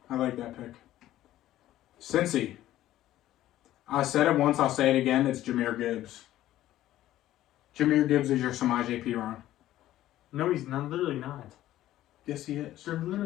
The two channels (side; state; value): right; quieter; 13.9 dB